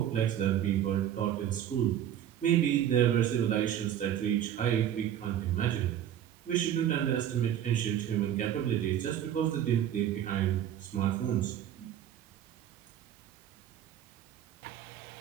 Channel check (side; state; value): left; quieter; 10.6 dB